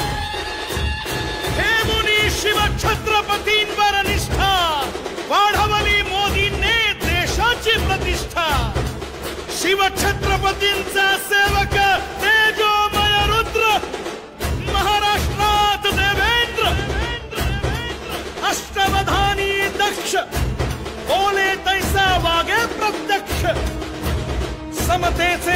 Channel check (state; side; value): identical; both; correlation 1.00